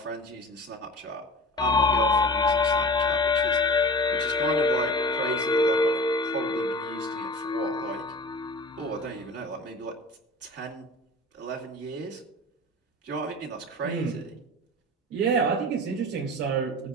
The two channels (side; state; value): both; normal; correlation 0.36